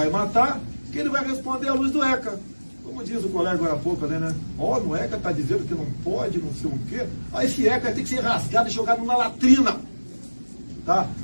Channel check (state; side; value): inverted; both; correlation -1.00